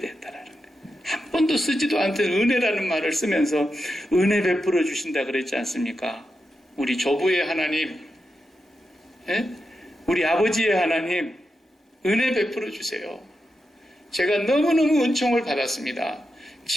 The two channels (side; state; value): both; normal; correlation 0.88